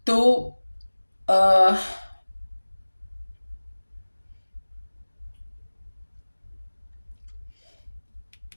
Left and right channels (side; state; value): both; inverted; correlation -1.00